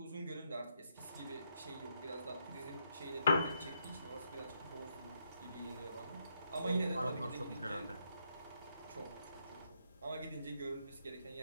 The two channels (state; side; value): inverted; both; correlation -0.78